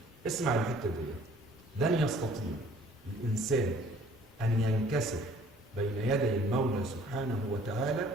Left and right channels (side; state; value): both; normal; correlation 0.55